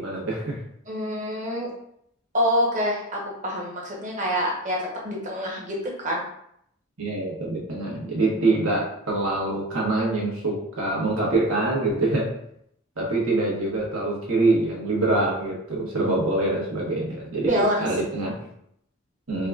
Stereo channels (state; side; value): normal; both; correlation 0.26